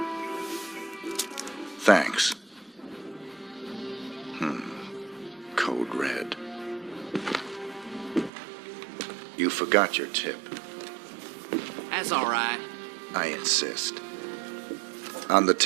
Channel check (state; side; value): drops out; left; at 8.3 s